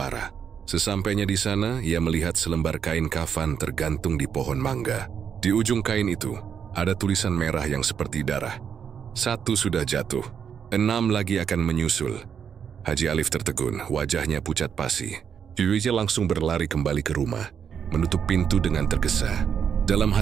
Sesampainya di sana, ia melihat selembar kain kafan tergantung di pohon mangga. Di ujung kain itu, ada tulisan merah yang seperti darah. 1 sudah jatuh, 6 lagi akan menyusul. Haji Alif tertegun, wajahnya pucat pasi. Dia langsung berlari kembali ke rumah, menutup pintu dengan tergesa. Dalam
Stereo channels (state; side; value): quieter; left; 7.6 dB